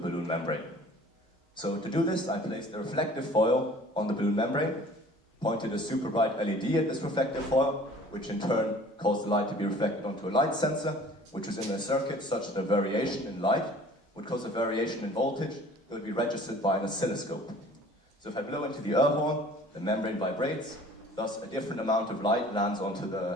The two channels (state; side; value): normal; both; correlation 0.49